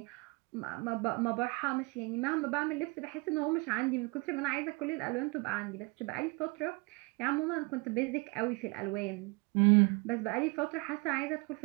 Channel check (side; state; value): left; quieter; 27.0 dB